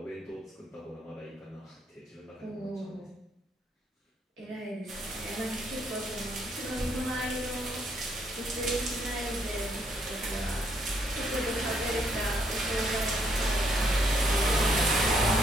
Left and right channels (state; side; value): normal; both; correlation 0.71